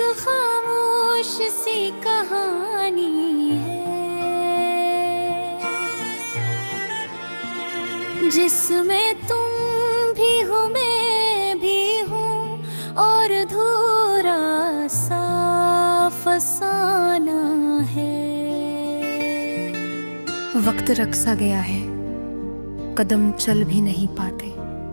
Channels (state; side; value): inverted; both; correlation -1.00